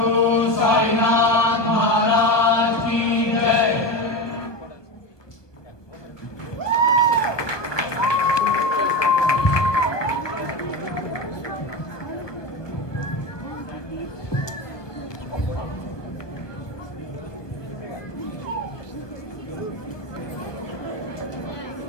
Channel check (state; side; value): late; right; 1.2 ms